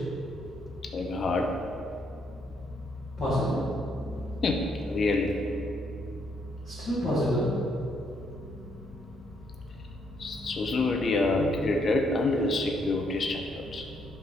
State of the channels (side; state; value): both; normal; correlation 0.73